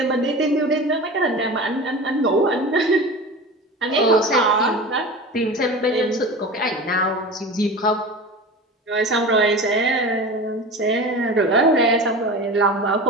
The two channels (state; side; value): normal; both; correlation 0.32